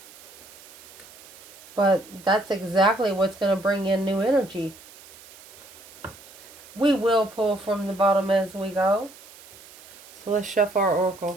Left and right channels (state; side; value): noise; right; hiss, 20 dB below the sound